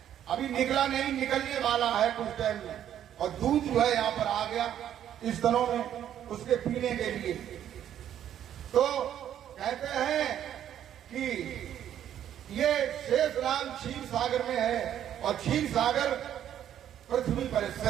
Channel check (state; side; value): quieter; left; 10.5 dB